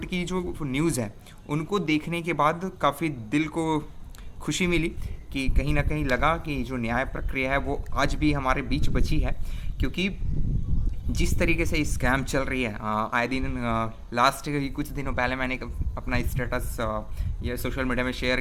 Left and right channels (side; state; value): both; identical; correlation 1.00